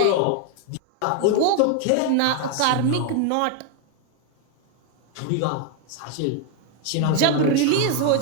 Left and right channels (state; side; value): different; both; correlation 0.01